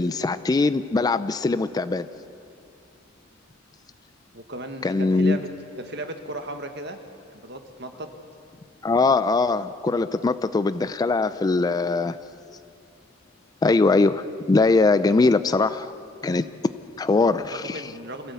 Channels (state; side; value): quieter; right; 3.0 dB